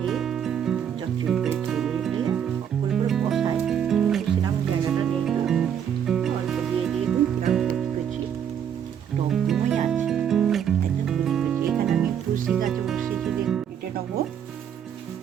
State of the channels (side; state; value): left; quieter; 8.7 dB